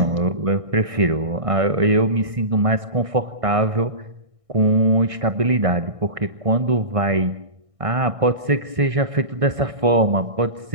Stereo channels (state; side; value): late; left; 1.6 ms